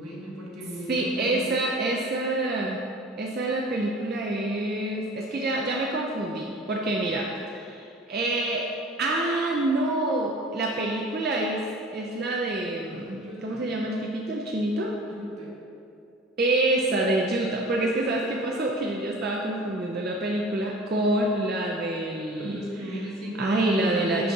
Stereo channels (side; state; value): both; normal; correlation 0.43